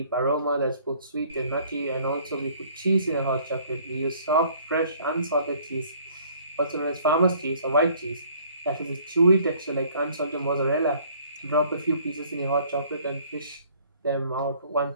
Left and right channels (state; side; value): inverted; both; correlation -0.57